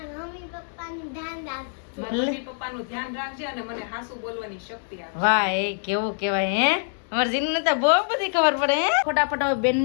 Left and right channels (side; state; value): right; silent; digital silence